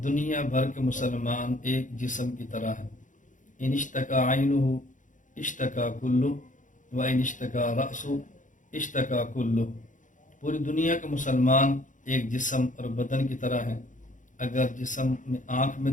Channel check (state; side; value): late; right; 0.37 ms